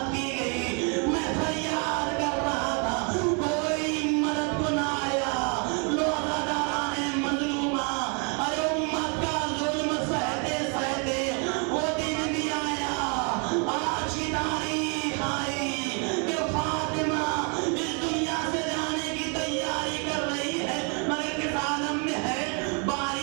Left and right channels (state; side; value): quieter; left; 36.5 dB